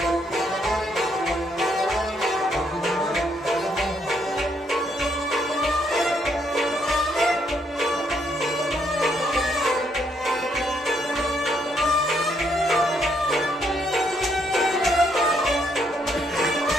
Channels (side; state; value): both; normal; correlation 0.73